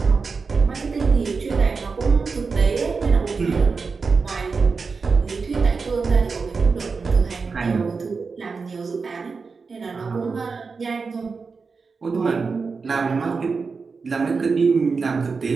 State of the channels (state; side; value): quieter; left; 4.8 dB